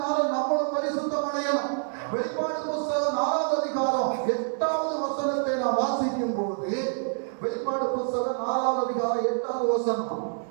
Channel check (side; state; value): left; silent; digital silence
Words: நம்மளும் பரிசுத்தம் அடையணும். வெளிப்பாடு புத்தகம் 4ஆம் அதிகாரம் 8வது வசனத்தை நாம் வாசிக்கும் போது, வெளிப்பாடு புத்தகம் 4ஆம் அதிகாரம் 8வது வசனம்.